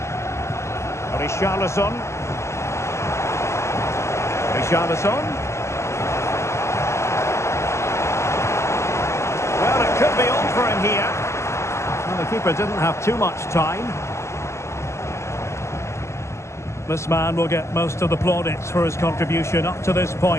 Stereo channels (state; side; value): late; right; 0.13 ms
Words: Richarlison. Richarlison. Well, it could be on for him here. Well, the keeper didn't have too much time. This man will get most of the plaudits for his contribution up to this